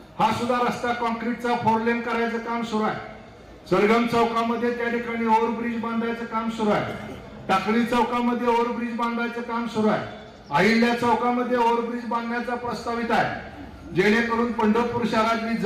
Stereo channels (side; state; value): both; identical; correlation 1.00